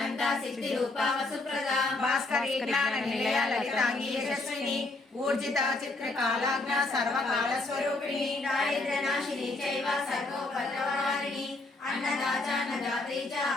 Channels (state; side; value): quieter; right; 3.1 dB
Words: సిద్ధి రూపా వసుప్రదా భాస్కరీ జ్ఞాన నిలయ లలితాంగి యశస్విని ఊర్జిత చిత్రకాలాజ్ఞ సర్వకాల స్వరూపిణి దారిద్ర్యనాశిని చైవ సర్వోపద్రవహారిణి అన్నదాచానదాత్రీ చ